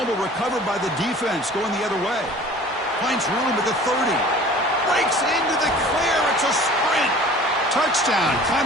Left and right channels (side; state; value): both; normal; correlation 0.45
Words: recovered by the defense going the other way. Finds room at the 30. Breaks into the clear. It's a sprint. Touchdown,